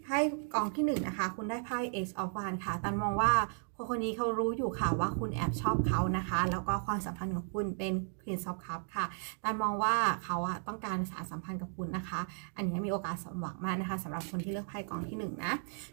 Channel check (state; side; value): silent; left; 55 dB below the other